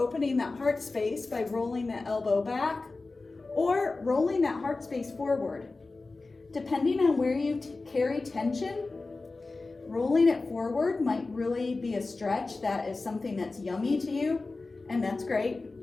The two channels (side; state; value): right; quieter; 3.6 dB